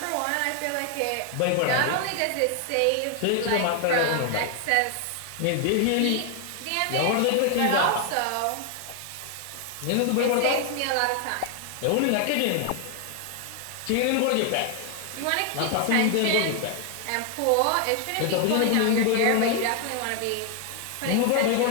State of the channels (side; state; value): both; different; correlation 0.00